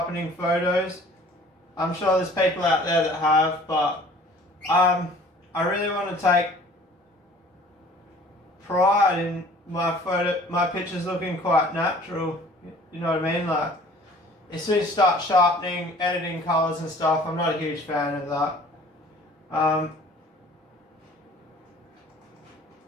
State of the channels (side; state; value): both; normal; correlation 0.50